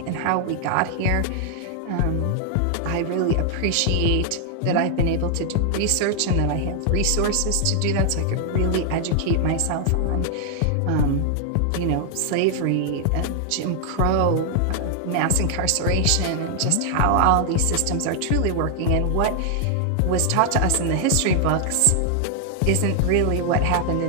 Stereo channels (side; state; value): both; different; correlation 0.00